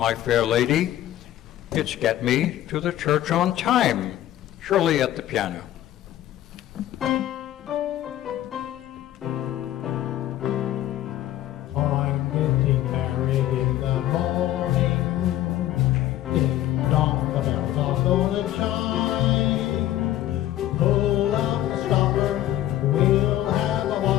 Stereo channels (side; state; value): right; quieter; 13.3 dB